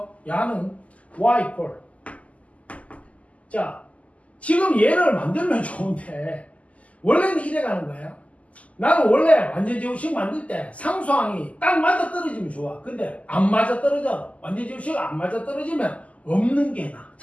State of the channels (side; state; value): right; late; 0.068 ms